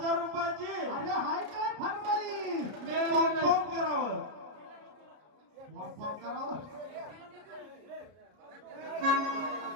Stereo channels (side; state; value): left; late; 33 ms